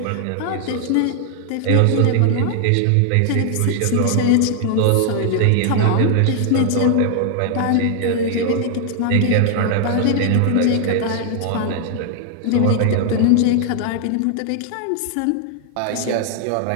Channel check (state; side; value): different; both; correlation 0.00